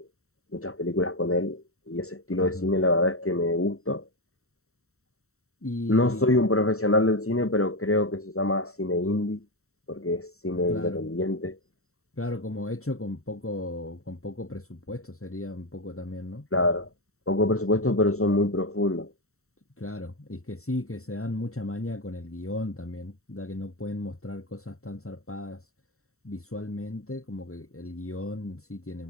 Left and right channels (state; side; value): late; right; 0.63 ms